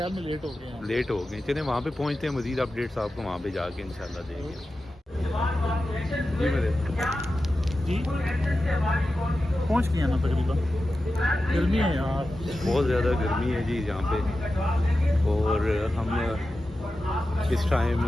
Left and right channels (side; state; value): both; normal; correlation 0.93